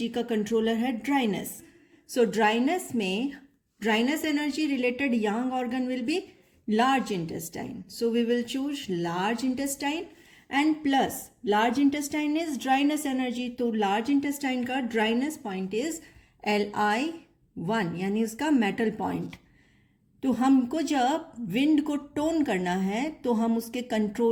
का कंट्रोलर है dryness. So dryness energy related yang organ will be large intestine. So we will choose large intestine and plus large intestine is dryness energy. तो large intestine का dryness point is Li1, यानी उसका metal point। तो हमको जब wind को टोन करना है तो हम उसके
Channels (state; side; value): identical; both; correlation 1.00